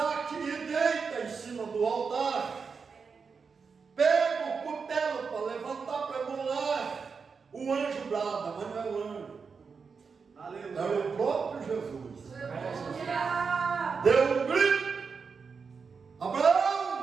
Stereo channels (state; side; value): quieter; left; 5.4 dB